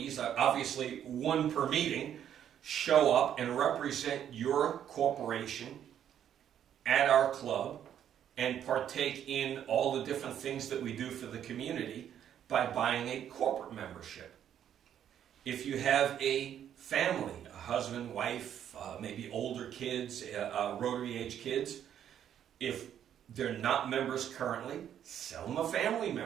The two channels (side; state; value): left; quieter; 9.8 dB